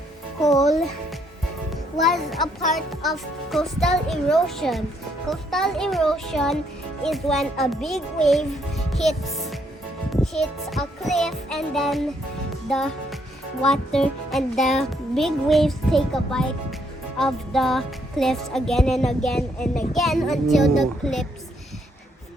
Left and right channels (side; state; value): both; normal; correlation 0.72